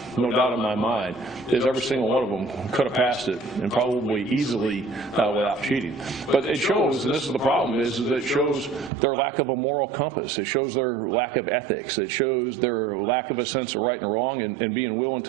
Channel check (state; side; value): drops out; left; at 8.9 s